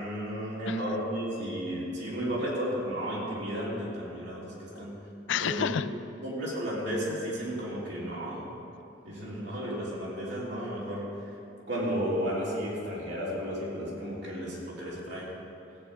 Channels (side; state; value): both; normal; correlation 0.37